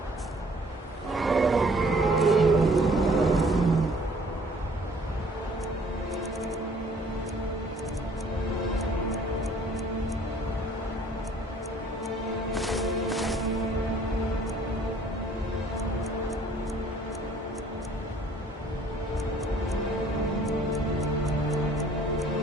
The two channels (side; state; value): both; normal; correlation 0.57